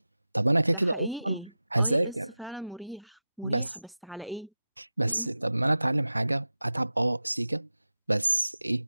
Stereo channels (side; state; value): both; inverted; correlation -0.94